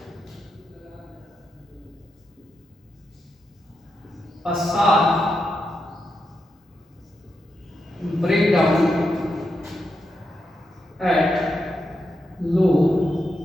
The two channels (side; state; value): both; normal; correlation 0.85